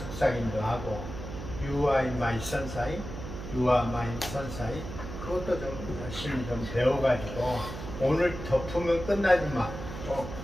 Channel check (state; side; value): noise; right; hum, 9 dB below the sound